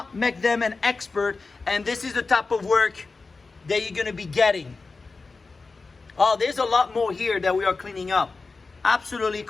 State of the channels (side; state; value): right; quieter; 4.0 dB